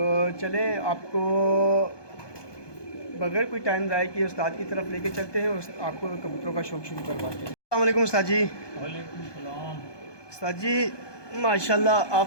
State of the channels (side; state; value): right; late; 1.2 ms